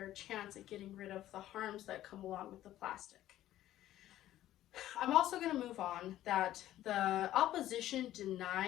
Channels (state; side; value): quieter; right; 13.5 dB